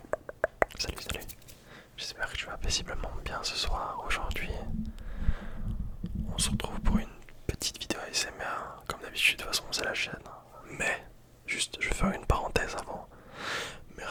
Salut, salut. J'espère que tu vas paisiblement bien ce soir. Aujourd'hui, on se retrouve pour une petite vidéo ASMR. Comme d'habitude, de toute façon, c'est la chaîne. Mais, juste, je vais faire une parenthèse avant.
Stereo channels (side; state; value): both; identical; correlation 1.00